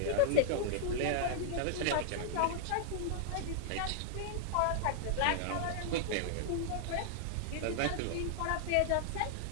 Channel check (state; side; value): different; both; correlation -0.01